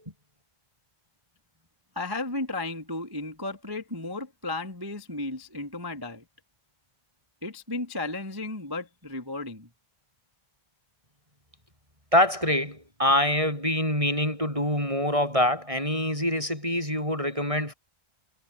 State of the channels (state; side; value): late; left; 1.6 ms